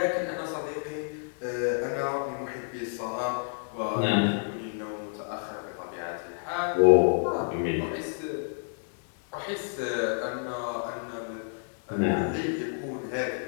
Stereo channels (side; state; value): right; silent; 58 dB below the other